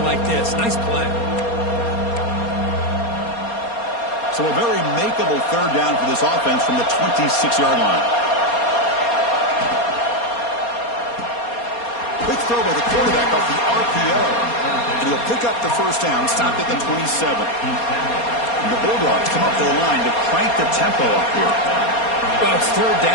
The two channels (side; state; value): right; late; 4.3 ms